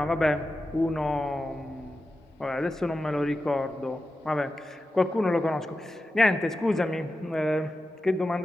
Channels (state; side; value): normal; both; correlation 0.92